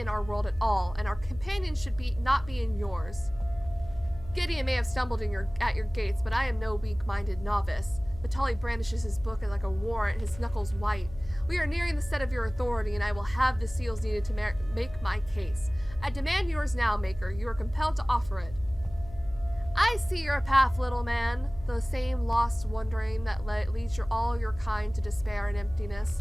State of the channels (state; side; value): noise; left; hum, 16 dB below the sound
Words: our world at all, and our companions should not be in yours. Gideon may have stumbled at your gates, but I am no weak-minded novice. Vitali brandishes his book like a warrant, his knuckles white. We are nearing the set of your authority, and I will have the seals needed to make my case. I demand yours now, Maker. You are compelled to offer it. I see your path, little man. The same lost wandering that leads all your kind to despair and emptiness.